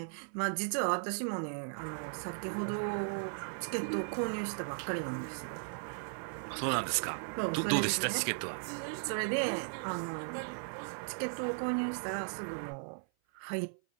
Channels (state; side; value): silent; left; 53 dB below the other